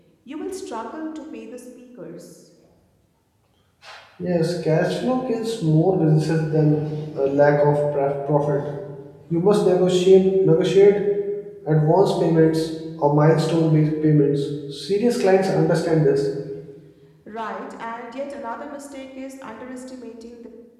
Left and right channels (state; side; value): identical; both; correlation 1.00